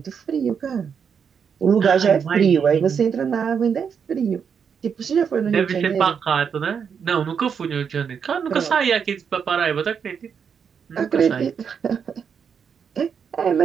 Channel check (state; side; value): quieter; left; 6.9 dB